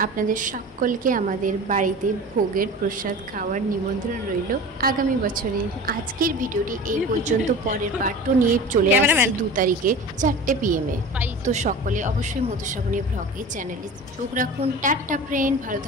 আপনাদের সকলকে আমাদের বাড়িতে ভোগের প্রসাদ খাওয়ার নিমন্ত্রণ রইল আগামী বছরে। আজকের ভিডিওটি এই পর্যন্ত। পরের পার্টও নিয়ে চলে আসছি 2 তারিখে 4টে PM এ। তো সকলে অবশ্যই মধুশ্রাবণী ব্লগে চ্যানেলে চোখ রাখুন। টাটা ফ্রেন্ড, ভালো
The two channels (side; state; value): both; normal; correlation 0.36